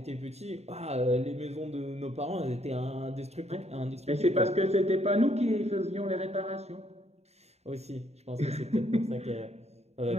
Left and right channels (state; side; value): late; left; 0.31 ms